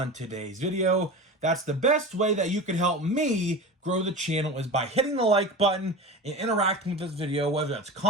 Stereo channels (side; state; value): both; normal; correlation 0.30